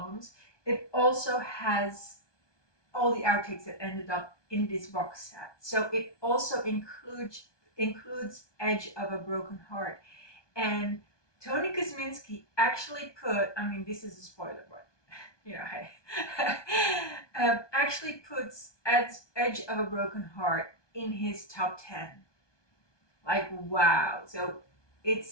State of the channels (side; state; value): right; late; 1.2 ms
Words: it also has all the outtakes that ended up in this box set. So it also includes includes Edge of a Broken Heart. And Tony Kosminski actually put, I mean, this is a spoiler, but you know, hey, actually puts Edge of a Broken Heart in his top 10. Like, wow. So